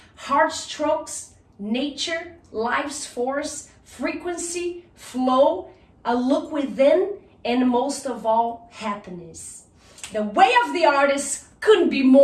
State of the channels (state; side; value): identical; both; correlation 1.00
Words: heartstrokes, nature, life's force, frequency, flow, a look within, and most of all, happiness. The way of the artist couldn't be